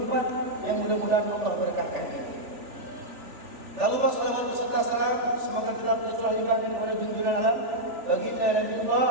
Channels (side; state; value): left; late; 3.4 ms